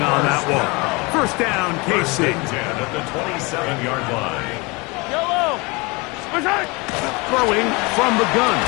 on that one. First down, KC. At the 27-yard line. Throwing from the gun.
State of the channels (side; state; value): right; quieter; 26.6 dB